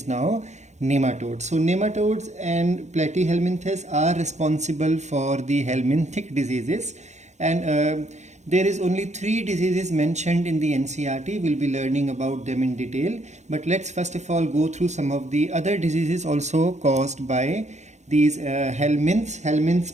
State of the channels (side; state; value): left; late; 0.33 ms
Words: now nematodes. So nematodes and Platyhelminthes are responsible for the helminthic diseases, and there is only 3 diseases mentioned in the NCERT. We'll be learning about them in detail, but let's first of all go through some of the other diseases also caused by these helminths.